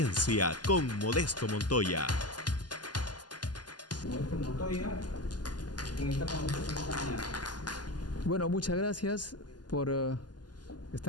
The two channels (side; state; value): right; late; 0.70 ms